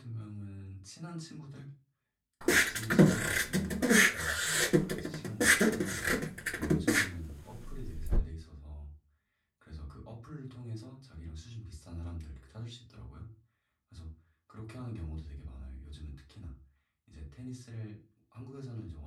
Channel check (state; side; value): identical; both; correlation 1.00